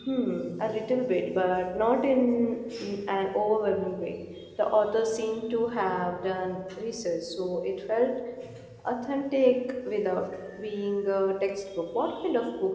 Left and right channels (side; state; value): both; identical; correlation 1.00